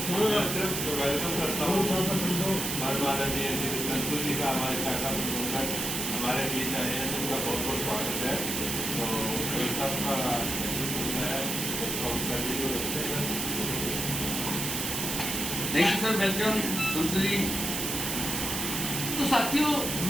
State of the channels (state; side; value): noise; right; hiss, 2 dB below the sound